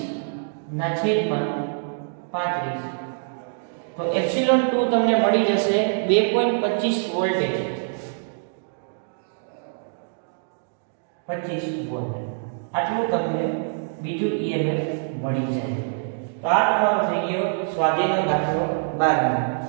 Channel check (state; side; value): silent; left; digital silence